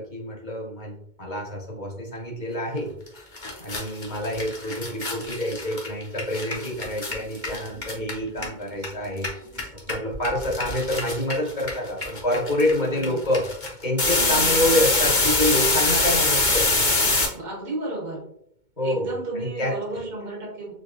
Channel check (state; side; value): late; left; 2.2 ms